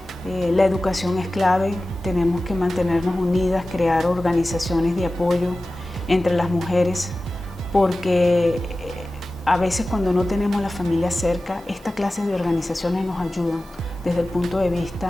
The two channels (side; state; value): both; normal; correlation 0.96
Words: La educación es clave, tenemos que mantenernos unidas, crear organizaciones de apoyo entre las mujeres, porque a veces cuando no tenemos la familia cerca, esta clase de organizaciones nos ayudan desde el punto de